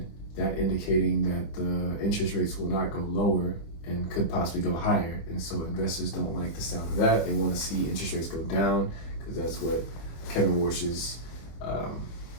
that indicating that the interest rates will not go lower and could possibly go higher. And so investors don't like the sound of that. They want to see interest rates go down because that's what Kevin Warsh's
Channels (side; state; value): right; late; 25 ms